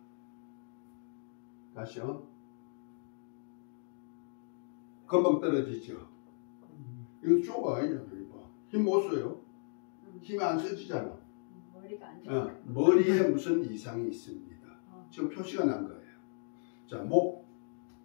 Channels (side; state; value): right; silent; digital silence